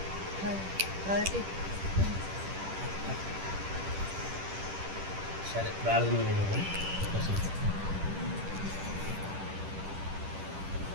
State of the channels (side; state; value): left; late; 10 ms